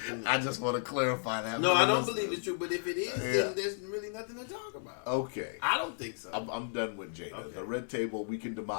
I just want to clarify that. no, for I the don't listeners. believe it's true. But if it is, Yeah. then there's really nothing to talk about. Okay. I don't think so. I'm done with Jada. Okay. The red table, we can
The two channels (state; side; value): silent; right; digital silence